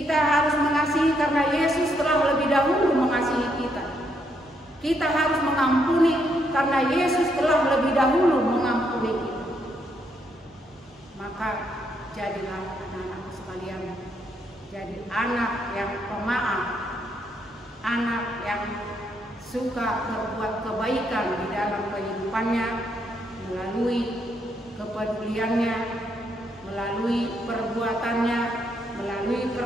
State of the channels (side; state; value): both; normal; correlation 0.75